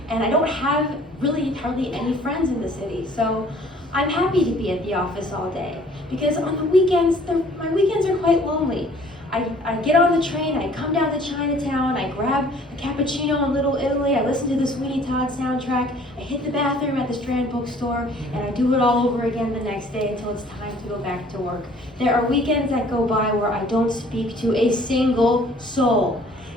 and I don't have really hardly any friends in the city. So I'm happy to be at the office all day because on the weekends, my weekends are quite lonely. I get on the train, I come down to Chinatown, I grab a cappuccino in Little Italy, I listen to the Sweeney Todd soundtrack, I hit the bathroom at the Strand bookstore, and I do it all over again the next day until it's time to go back to work. There are weekends that go by where I don't speak to a single soul.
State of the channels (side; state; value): both; normal; correlation 0.55